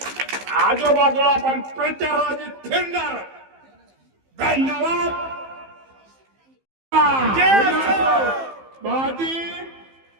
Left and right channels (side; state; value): left; late; 15 ms